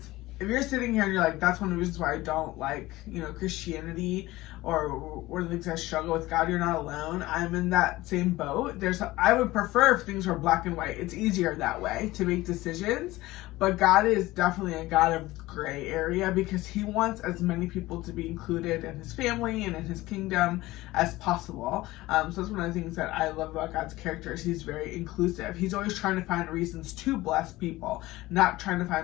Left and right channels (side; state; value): right; quieter; 18.4 dB